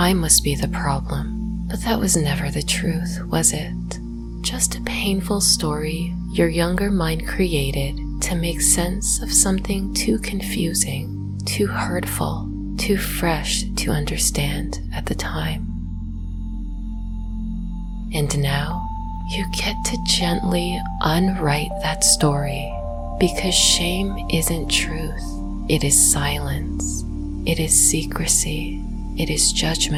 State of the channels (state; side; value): identical; both; correlation 1.00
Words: must be the problem. But that was never the truth, was it? Just a painful story your younger mind created to make sense of something too confusing, too hurtful, too fresh to understand at the time. And now you get to gently unwrite that story, because shame isn't truth. It is silence. It is secrecy. It is